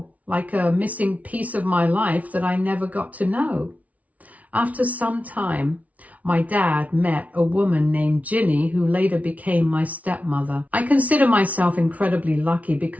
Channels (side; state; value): left; late; 0.069 ms